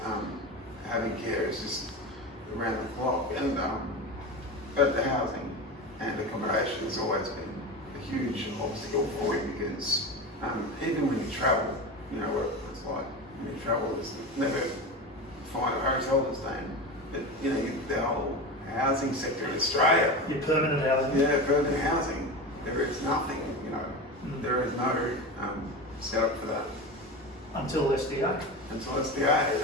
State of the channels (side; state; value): both; normal; correlation 0.25